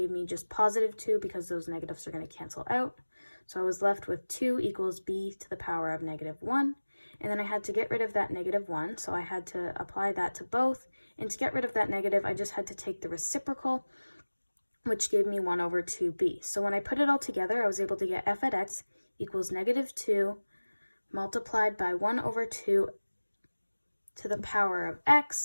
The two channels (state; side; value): inverted; both; correlation -1.00